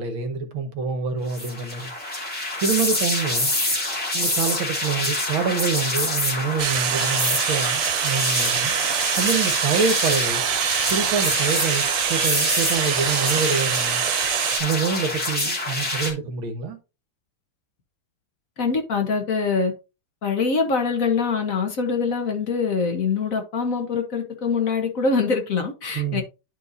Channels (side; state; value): both; normal; correlation 0.03